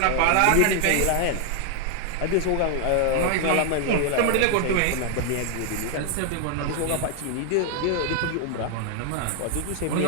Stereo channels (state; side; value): different; both; correlation 0.00